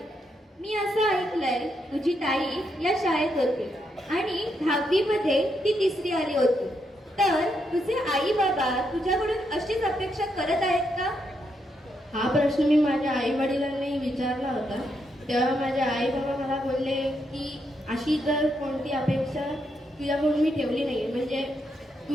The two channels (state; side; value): normal; both; correlation 0.80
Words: मी असं ऐकलंय तुझी ताई या शाळेत होती आणि 10वी मध्ये ती तिसरी आली होती. तर तुझे आई बाबा तुझ्याकडून अशीच अपेक्षा करत आहेत का? हा प्रश्न मी माझ्या आई वडिलांनाही विचारला होता. तेव्हा माझे आई बाबा मला बोलले की अशी तर कोणती अपेक्षा तुझ्याकडून मी ठेवली नाही. म्हणजे